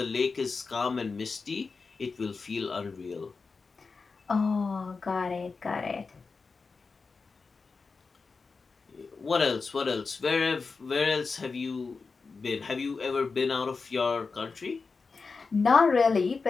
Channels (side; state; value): right; quieter; 4.5 dB